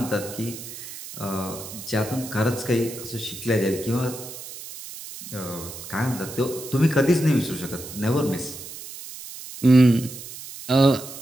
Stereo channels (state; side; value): noise; right; hiss, 12 dB below the sound